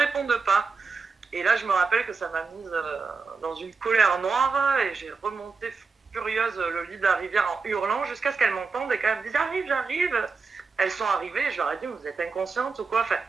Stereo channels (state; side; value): quieter; left; 4.6 dB